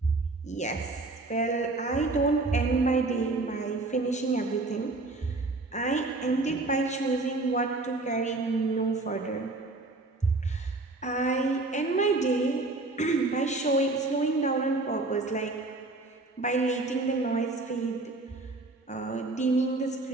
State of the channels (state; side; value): quieter; left; 3.2 dB